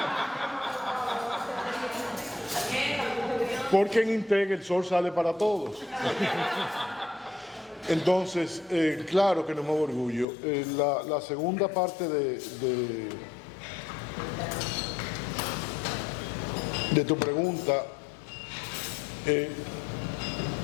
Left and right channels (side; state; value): right; drops out; at 10.2 s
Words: Porque en INTEC el sol sale para todos. Entonces, claro que nos mueve orgullo. La segunda parte de tu pregunta,